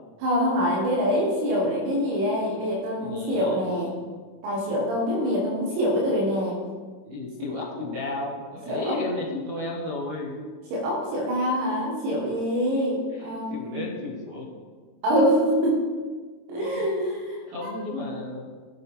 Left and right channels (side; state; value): left; late; 26 ms